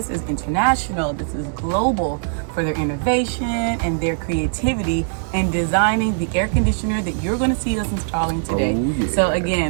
is international. This is global for their innovation and their creativity in designing the air conditioner that you're going to see us installing today. So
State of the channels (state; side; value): silent; left; 57 dB below the other